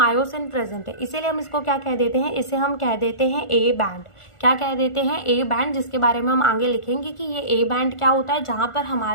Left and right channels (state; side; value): late; right; 1.4 ms